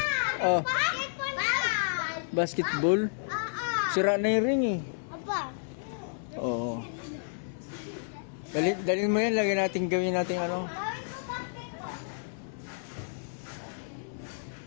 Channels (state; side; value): silent; right; 57 dB below the other